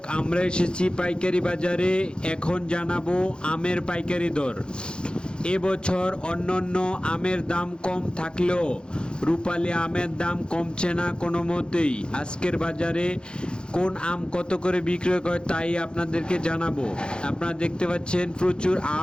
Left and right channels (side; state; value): right; late; 0.050 ms